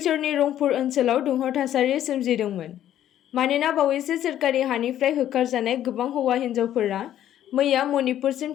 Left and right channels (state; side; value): quieter; right; 11.6 dB